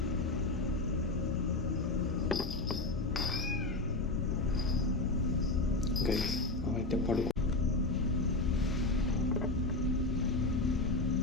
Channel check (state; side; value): quieter; right; 3.1 dB